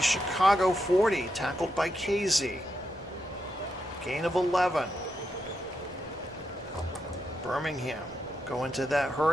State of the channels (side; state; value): both; normal; correlation 0.84